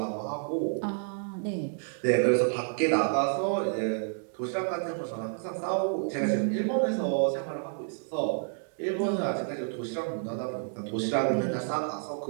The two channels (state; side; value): silent; left; digital silence